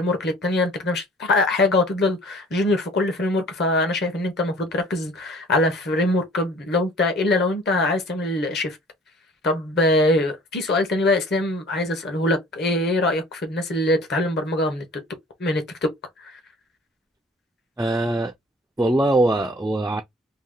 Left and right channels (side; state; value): both; normal; correlation 0.50